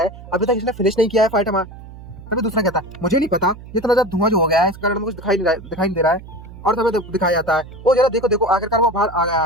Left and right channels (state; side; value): noise; right; hum, 16 dB below the sound